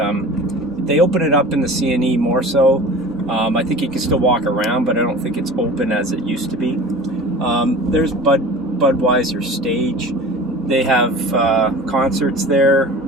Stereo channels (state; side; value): normal; both; correlation 0.39